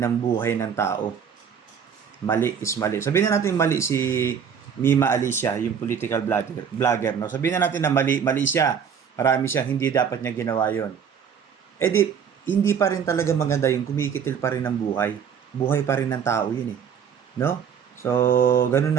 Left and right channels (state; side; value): quieter; left; 7.5 dB